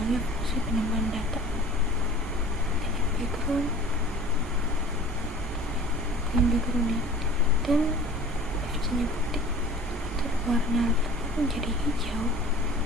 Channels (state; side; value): normal; both; correlation 0.44